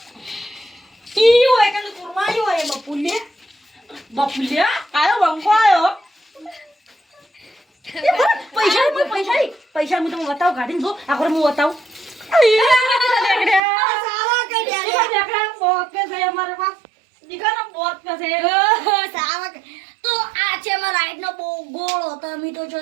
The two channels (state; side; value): drops out; left; at 13.6 s